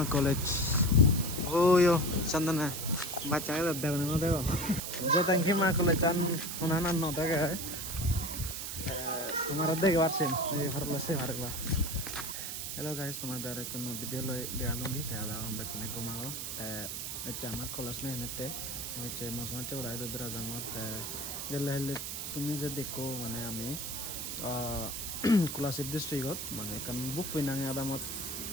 কলেজ ওয়ো চন্দনা বাচ্চাকে দেখো না দেখো যে তঙ্কিমা কলেজ আন ওনানা ন দেখে তোমার দেখে পারছেন এই ভারলা সে ভারলা হ্যালো গাইস তোমাদের কোনো বিদ্যালয় দেয়ালুঙ্গি তাহলে আমরা কিনে ঘুমাবো হচ্ছে আমার কলেজ নেই এনেতে হচ্ছে মশলা চৌড়াই দুধরা জামত গেলে হলে তুমি যে দেখো মানে আমি কোলাশিপ ডিস্ট্রিক্টত মানে কারণ বুক ফিনাঙে আদামত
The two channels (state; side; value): noise; right; hiss, 5 dB below the sound